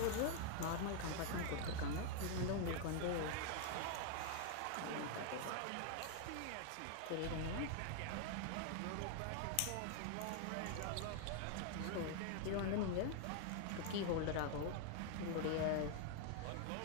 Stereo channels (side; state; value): both; different; correlation 0.00